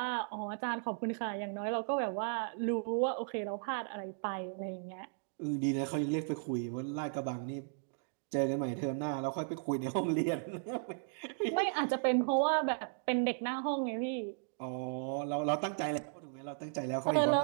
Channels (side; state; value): left; silent; digital silence